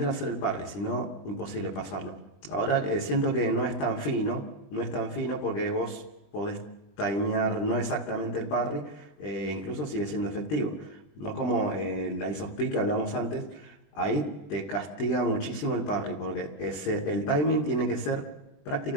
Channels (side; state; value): right; late; 21 ms